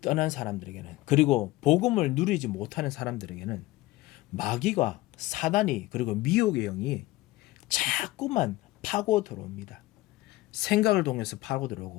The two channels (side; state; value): right; quieter; 18.4 dB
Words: 떠난 사람들에게는, 그리고 복음을 누리지 못하는 사람들에게는 마귀가, 사단이, 그리고 미혹의 영이 자꾸만 파고 들어옵니다. 생각을 통해서 파고